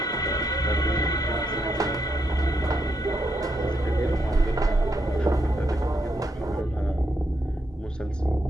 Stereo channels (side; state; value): both; normal; correlation 0.80